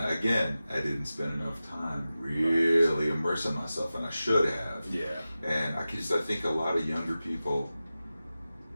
I didn't spend enough time really immersing myself, and I should have. Yeah. And I think a lot of younger people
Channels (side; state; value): both; inverted; correlation -0.95